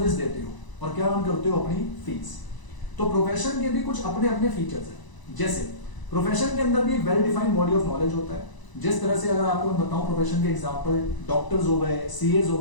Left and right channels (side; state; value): right; late; 1.0 ms